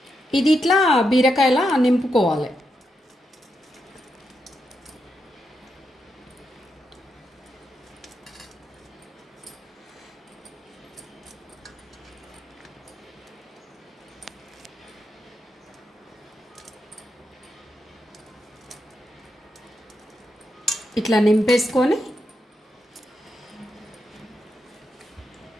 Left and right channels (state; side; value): normal; both; correlation 0.84